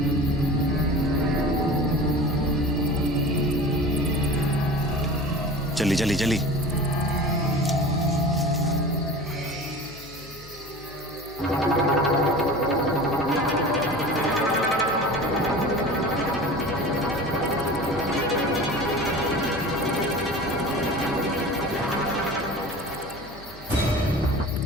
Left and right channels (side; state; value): left; noise; hum, 20 dB below the sound